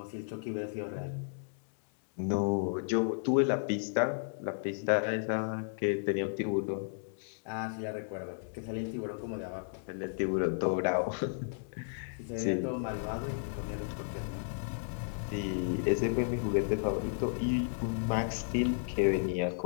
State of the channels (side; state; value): right; silent; 55 dB below the other